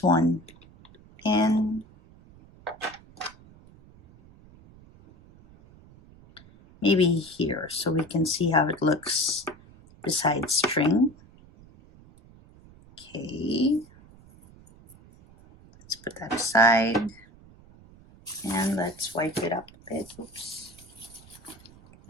one in. Maybe here so we can see how it looks beside string. Okay, let's put that aside and let's wipe it up a bit. Oops.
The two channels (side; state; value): right; noise; rumble, 24 dB below the sound